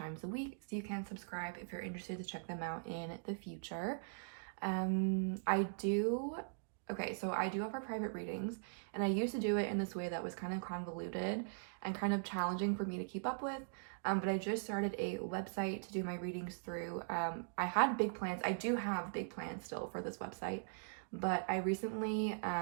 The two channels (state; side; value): silent; left; digital silence